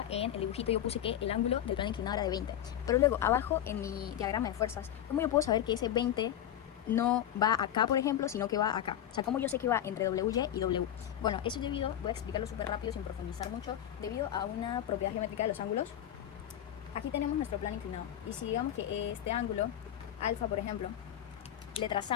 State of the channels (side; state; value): right; quieter; 11.0 dB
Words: en el dibujito yo puse que el ángulo del plano inclinado era de 20, pero luego abajo en mi diagrama de fuerzas, ¿cómo yo puedo saber que ese 20 no va acá, por ejemplo, sino que va acá? O sea, ¿cómo yo sé que va entre WY y W? Bueno, eso es debido, voy a explicarlo súper rápido sin profundizar mucho, debido a una propiedad geométrica de los ángulos. Aquí tenemos nuestro plano inclinado, y si digamos que este ángulo, alfa, por ejemplo, le